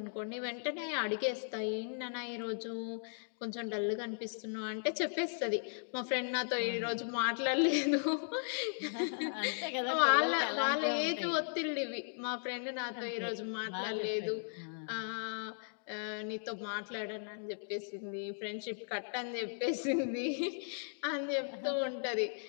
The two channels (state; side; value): silent; right; digital silence